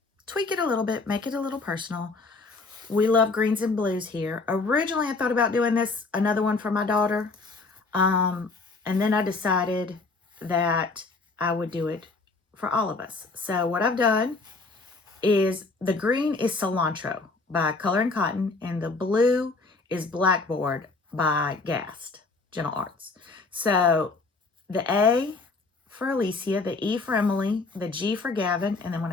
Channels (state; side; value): quieter; right; 3.8 dB